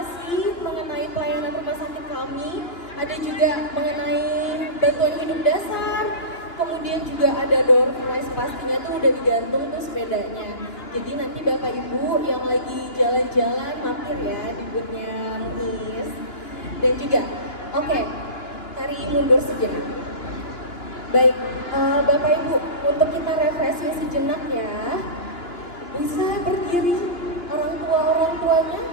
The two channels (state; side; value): late; right; 2.9 ms